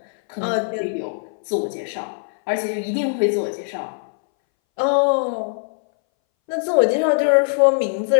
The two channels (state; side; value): silent; right; 62 dB below the other